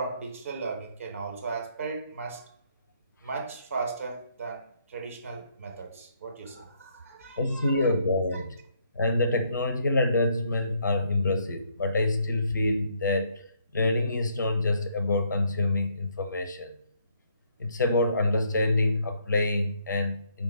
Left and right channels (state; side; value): inverted; both; correlation -0.70